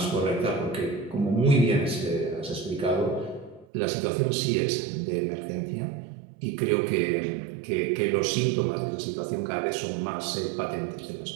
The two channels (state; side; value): drops out; left; at 3.7 s